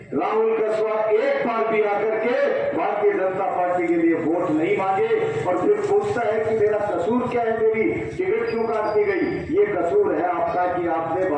राहुल कसवा एक बार भी आकर के भारतीय जनता पार्टी के लिए वोट नहीं मांगे और फिर पूछता है कि मेरा कसूर क्या है, मेरी टिकट क्यों काट दी गई। ये कसूर है आपका कि आपने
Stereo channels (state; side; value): identical; both; correlation 1.00